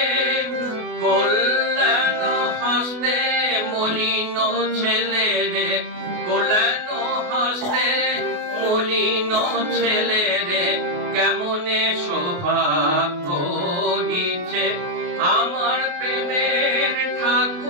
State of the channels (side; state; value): left; late; 28 ms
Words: কল্যাণ হস্তে মলিন ছেলে রে কল্যাণ হস্তে মলিন ছেলে রে কেমনে শোভা করিছে আমার প্রেমের